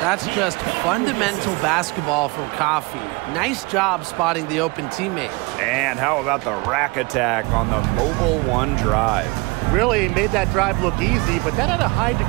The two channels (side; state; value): left; quieter; 26.1 dB